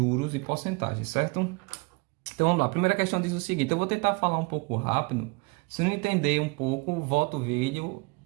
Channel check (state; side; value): quieter; left; 28.0 dB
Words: e porcentagem, certo? Então vamos lá, a primeira questão diz o seguinte, eu vou tentar falar um pouco rápido, se não entender um pouco, volta o vídeo,